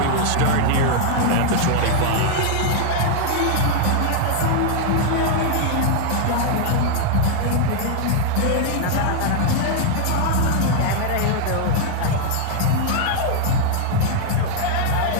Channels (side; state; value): both; different; correlation 0.00